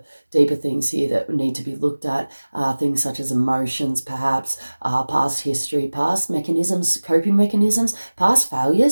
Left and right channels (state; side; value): inverted; both; correlation -1.00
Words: things here that need to be looked at, things such as emotions, perhaps, past history, past mechanisms, coping mechanisms, past